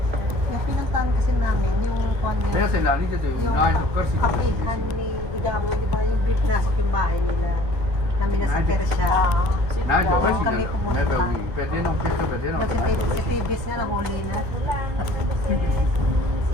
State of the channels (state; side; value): late; left; 1.8 ms